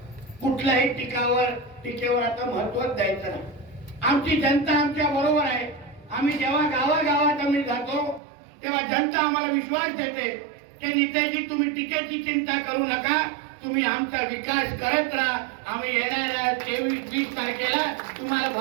कुठल्याही टीकेवर आता महत्त्व द्यायचं नाही. आमची जनता आमच्या बरोबर आहे. आम्ही जेव्हा गावागावात आम्ही जातो तेव्हा जनता आम्हाला विश्वास देते की नेत्याजी तुम्ही टीकेची चिंता करू नका, तुम्ही आमचा विकास करत राहा. आम्ही येणाऱ्या 23-20 तारखेला तुम्हाला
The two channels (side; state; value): left; drops out; at 8.2 s